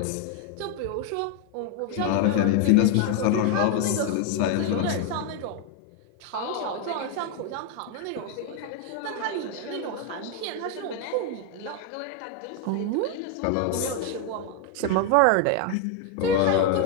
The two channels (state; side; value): different; both; correlation 0.01